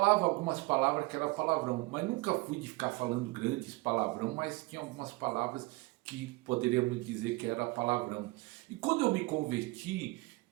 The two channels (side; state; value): left; quieter; 23.4 dB